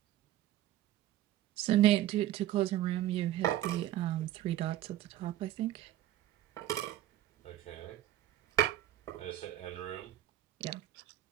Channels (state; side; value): quieter; left; 13.3 dB